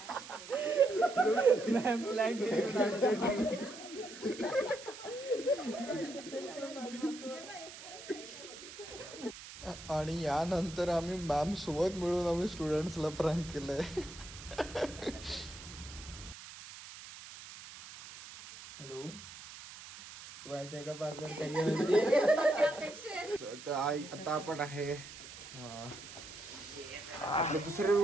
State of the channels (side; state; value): right; noise; hiss, 14 dB below the sound